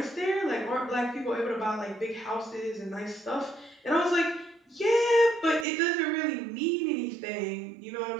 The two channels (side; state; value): left; drops out; at 5.7 s